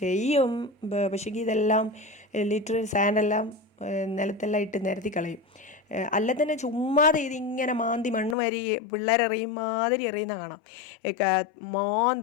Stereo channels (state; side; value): drops out; right; at 8.3 s